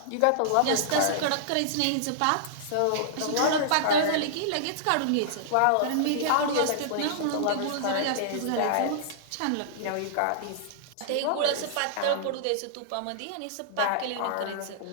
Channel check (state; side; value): different; both; correlation -0.02